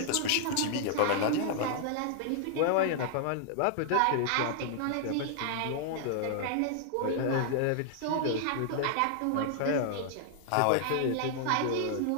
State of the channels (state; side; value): different; both; correlation -0.01